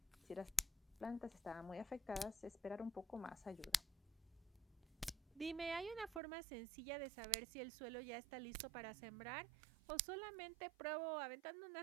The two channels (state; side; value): drops out; left; at 6.2 s